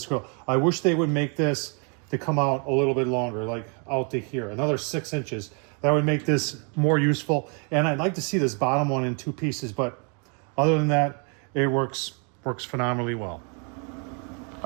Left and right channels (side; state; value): left; quieter; 37.1 dB